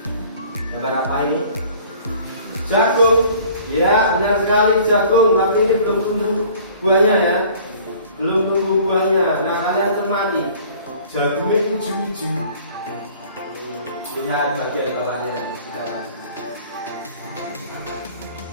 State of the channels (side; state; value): both; inverted; correlation -0.51